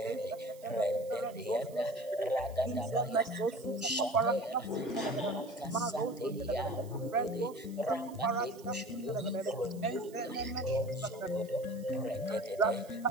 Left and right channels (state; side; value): noise; right; hiss, 23 dB below the sound